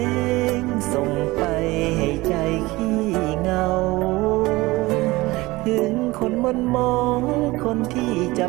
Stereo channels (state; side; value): quieter; left; 20.6 dB